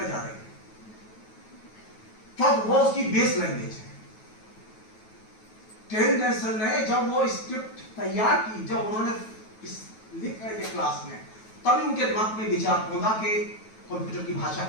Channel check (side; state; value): right; late; 9.2 ms